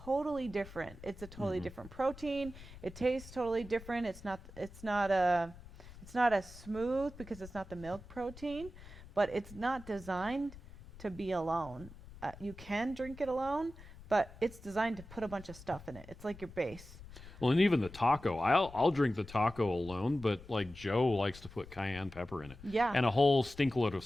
different. It's a totally different protein. It tastes totally different. It's not as smooth because it's not the milk protein, but it's not designed to be alone. You can drink it alone, but it's designed to put a bunch of stuff in it. It's like your base. Well, and even the taco, I'll drink the taco alone, but like Joe likes to put cayenne pepper in it. Yeah. And a whole stinkload of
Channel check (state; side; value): noise; left; rumble, 17 dB below the sound